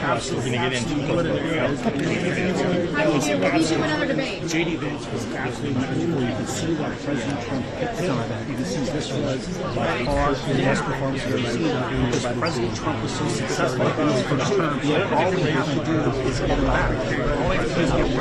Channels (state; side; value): identical; both; correlation 1.00